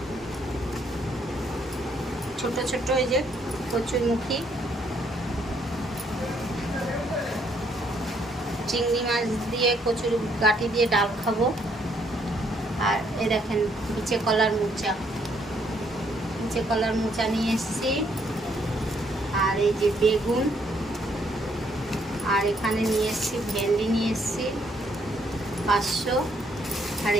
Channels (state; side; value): normal; both; correlation 0.70